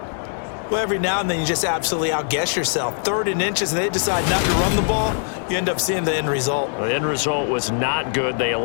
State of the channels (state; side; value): silent; right; digital silence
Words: Well, every now and then you just absolutely outguess yourself. 3rd and inches, and they decide not to run the ball. You end up seeing the end result. The end result was not good. They